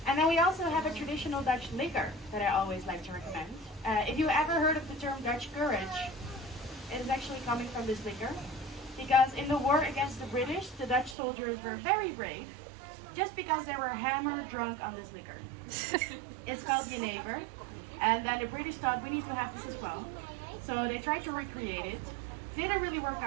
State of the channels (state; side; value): drops out; left; at 11.2 s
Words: And then we also have a traditional Dutch liquor that I always like to recommend. If you ever heard of the term Dutch courage, it is actually coming from this liquor. Because in the war against the British, the Dutch soldiers were very brave, just because they were hammered drunk on this liquor. It's called Jenever. And then the British thought, we need to have this as well. So they tried to recreate it. Didn't really work